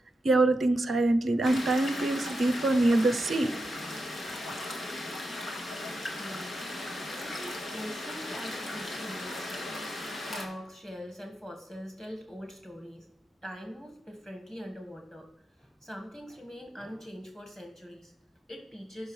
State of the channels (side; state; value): both; normal; correlation 0.88